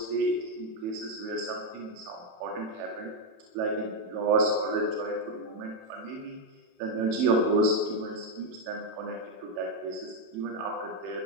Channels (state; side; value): late; left; 27 ms